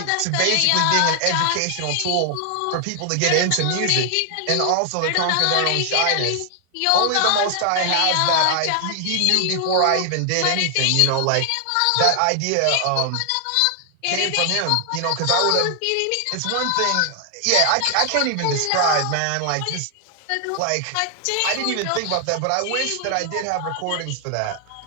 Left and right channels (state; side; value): different; both; correlation 0.00